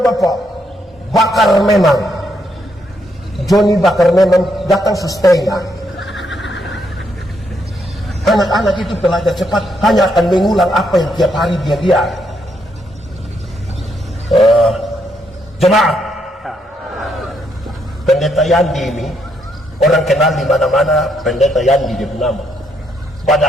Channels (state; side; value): normal; both; correlation 0.76